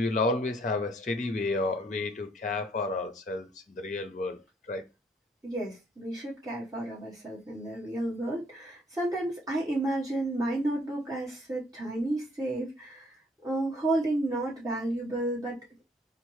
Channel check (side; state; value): both; normal; correlation 0.64